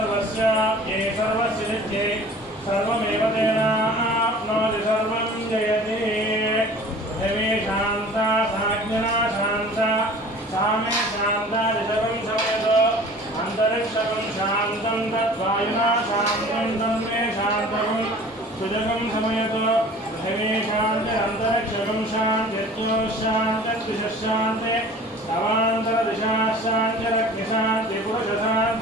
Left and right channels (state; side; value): normal; both; correlation 0.45